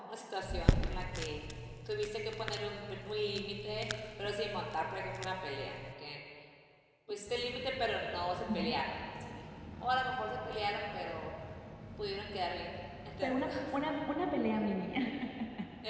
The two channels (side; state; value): both; identical; correlation 1.00